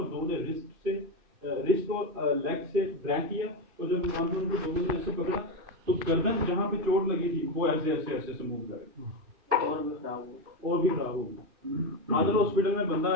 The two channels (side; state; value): left; late; 2.6 ms